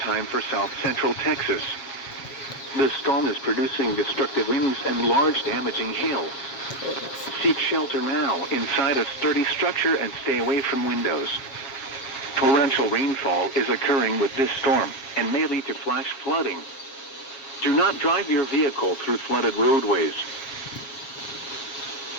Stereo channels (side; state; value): right; late; 7.4 ms